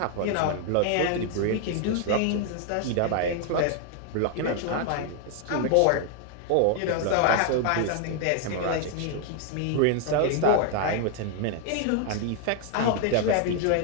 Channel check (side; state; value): both; different; correlation 0.00